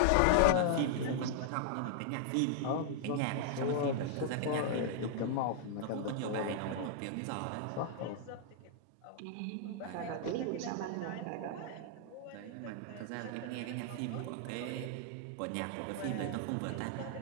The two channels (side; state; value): both; different; correlation -0.01